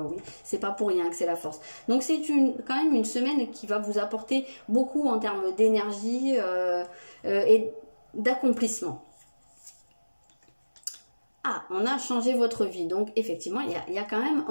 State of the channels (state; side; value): inverted; both; correlation -1.00